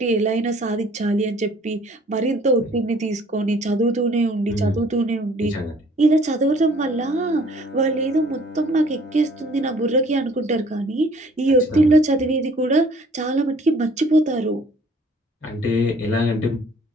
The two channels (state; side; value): normal; both; correlation 0.56